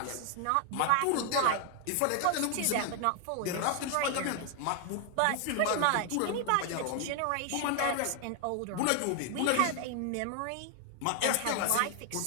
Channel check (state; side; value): different; both; correlation 0.00